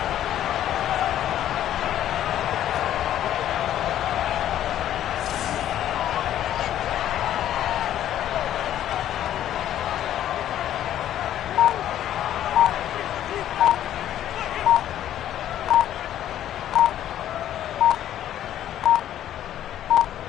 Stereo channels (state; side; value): quieter; right; 11.6 dB